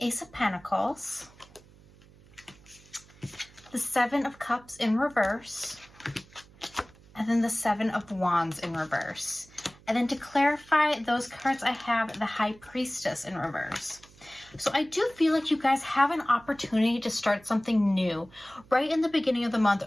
of Pentacles, the Seven of Cups in reverse, and then the Seven of Wands in reverse. And then to clarify those cards, I have the High Priestess in reverse. So I do feel like you guys have an opportunity to start something new right in the beginning of the month,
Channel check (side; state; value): right; noise; hum, 25 dB below the sound